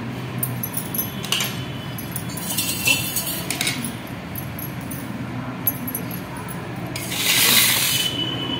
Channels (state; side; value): identical; both; correlation 1.00